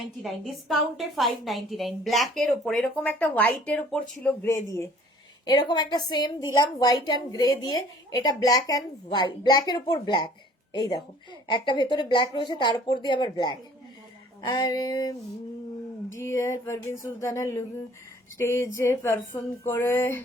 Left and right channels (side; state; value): both; normal; correlation 0.54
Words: ডিসকাউন্টে 599, ব্ল্যাকের ওপর এরকম একটা হোয়াইটের ওপর ছিল গ্রে দিয়ে, এরকম একটা সেম দিলাম হোয়াইট অ্যান্ড গ্রে দিয়ে, এটা ব্ল্যাক অ্যান্ড হোয়াইট, ব্ল্যাকের ওপর ব্ল্যাক, এই দেখো একটা ভেতরে ব্ল্যাক রয়েছে তার উপর দিয়ে আবার ব্ল্যাক। আর ডিয়ার পারভিন সুলতানা স্টেজে পারফর্ম করে